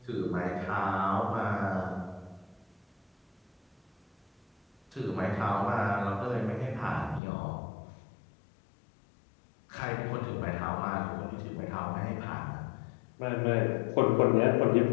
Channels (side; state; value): right; drops out; at 7.2 s